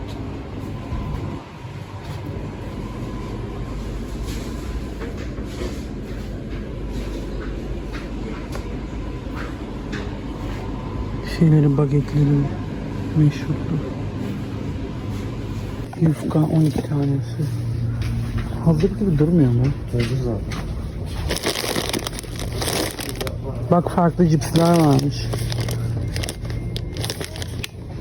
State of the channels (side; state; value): both; identical; correlation 1.00